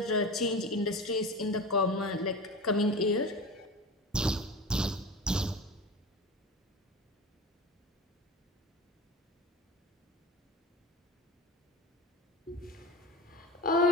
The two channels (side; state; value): both; normal; correlation 0.32